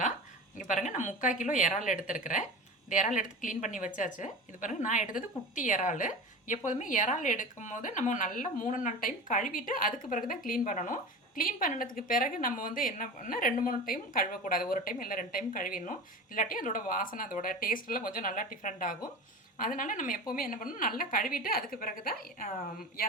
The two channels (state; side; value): normal; both; correlation 0.31